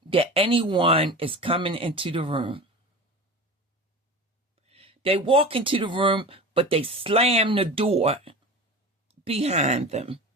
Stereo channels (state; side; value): normal; both; correlation 0.32